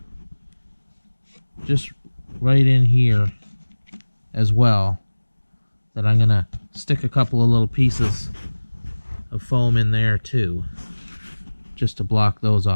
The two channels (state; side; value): inverted; both; correlation -1.00